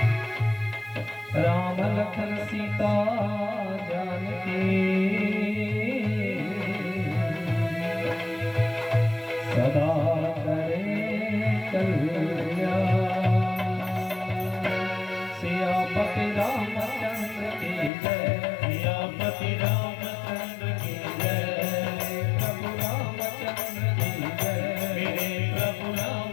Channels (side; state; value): right; drops out; at 17.9 s